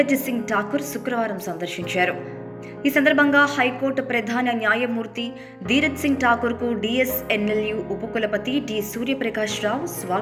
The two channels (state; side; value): identical; both; correlation 1.00